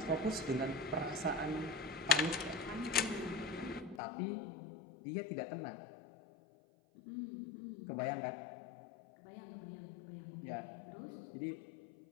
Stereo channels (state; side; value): drops out; right; at 4.0 s